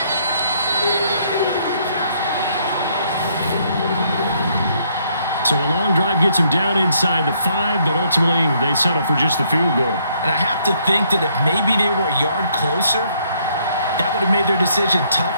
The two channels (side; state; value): both; inverted; correlation -0.69